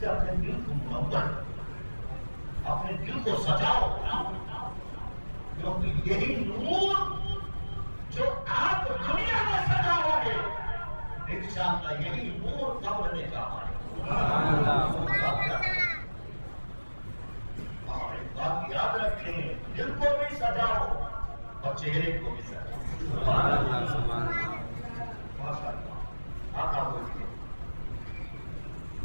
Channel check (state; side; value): inverted; both; correlation -1.00